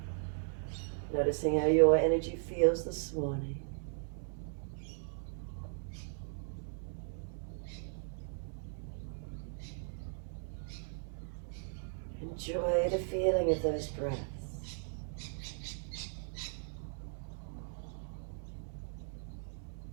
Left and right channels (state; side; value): silent; left; 53 dB below the other